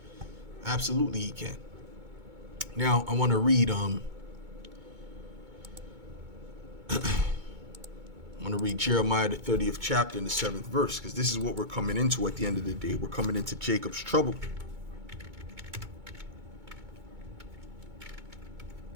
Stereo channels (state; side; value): late; left; 2.2 ms